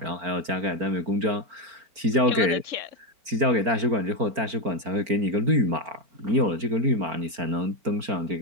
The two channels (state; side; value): late; left; 4.4 ms